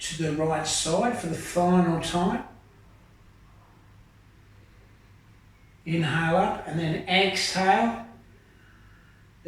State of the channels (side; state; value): both; identical; correlation 1.00